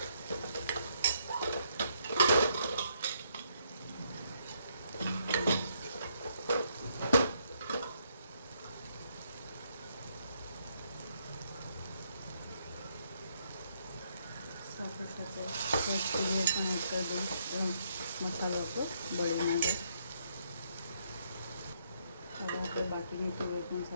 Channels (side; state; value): both; inverted; correlation -0.73